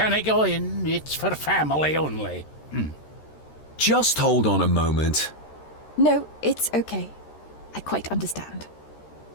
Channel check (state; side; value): late; right; 13 ms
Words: go in. It's for family only. Just hold on a moment. No, it's okay. I quite understand.